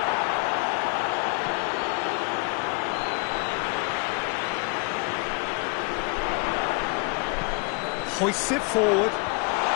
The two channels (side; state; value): right; quieter; 31.6 dB